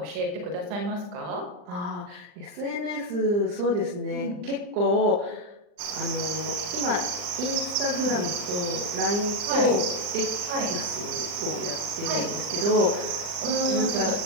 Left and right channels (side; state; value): left; late; 40 ms